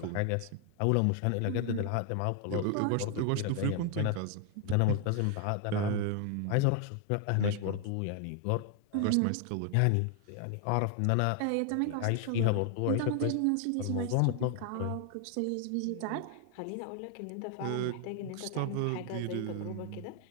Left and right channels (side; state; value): both; different; correlation 0.00